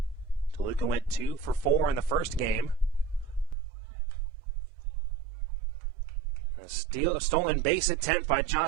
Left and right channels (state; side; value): drops out; left; at 3.6 s